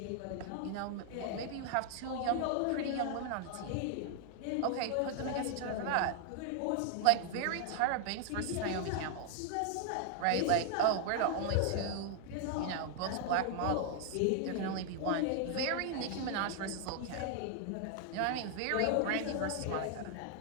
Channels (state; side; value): different; both; correlation 0.00